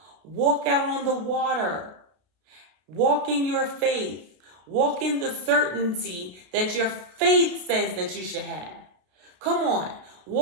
Walk out on the water. Walk in your faith. Walk in the certainty that your faith says that you should have. Come on.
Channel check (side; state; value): left; late; 32 ms